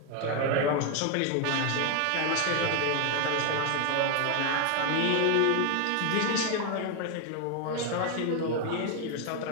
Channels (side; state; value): both; different; correlation 0.01